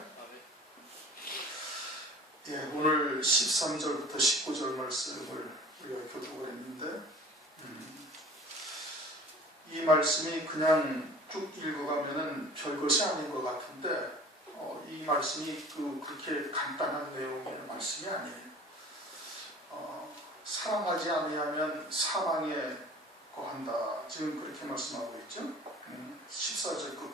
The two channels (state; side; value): normal; both; correlation 0.45